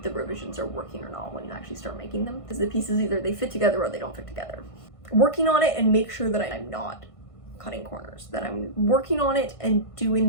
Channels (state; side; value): late; right; 1.5 ms